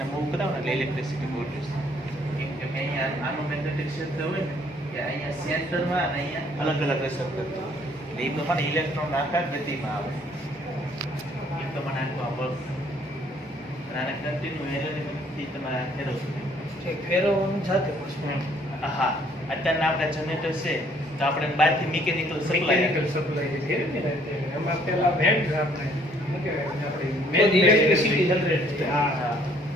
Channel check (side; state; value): both; normal; correlation 0.62